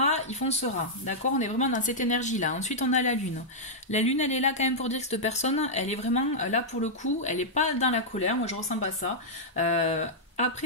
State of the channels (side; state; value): both; normal; correlation -0.08